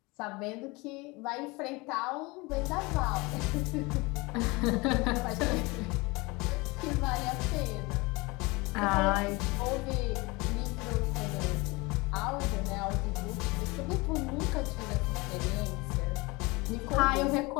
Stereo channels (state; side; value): quieter; right; 24.9 dB